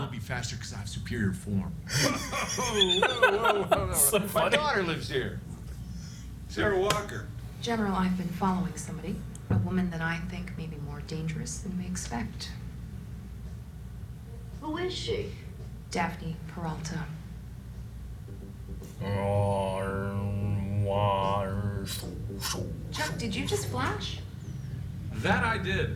be faster because I have superior form. Whoa. So My funny. daughter lives here. Sarah Walker. General, I've been following somebody. A woman that I think may be more dangerous than we expect. Who is she? Daphne Peralta. Did you just flash? That I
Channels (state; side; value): identical; both; correlation 1.00